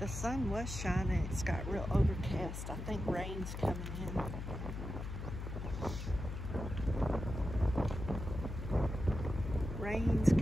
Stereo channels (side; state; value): left; noise; hum, 6 dB below the sound